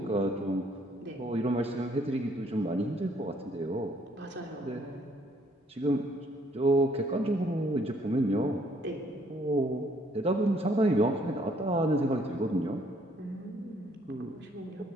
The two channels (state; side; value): normal; both; correlation 0.65